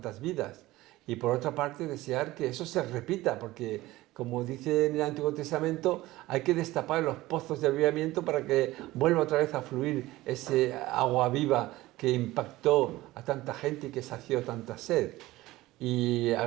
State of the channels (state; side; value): quieter; left; 17.8 dB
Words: vidas. Y por otra parte, desear que eso se repita, porque, como dice en el Antiguo Testamento, hay que destapar los pozos de avivamiento para que vuelva otra vez a fluir ese agua viva que impactó a tanta gente y que sació tanta sed. Y